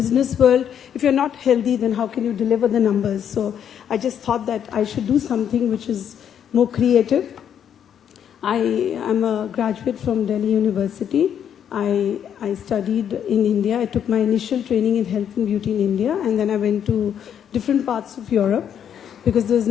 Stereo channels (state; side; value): quieter; right; 8.9 dB